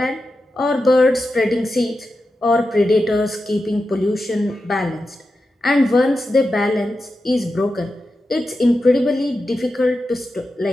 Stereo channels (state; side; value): normal; both; correlation 0.90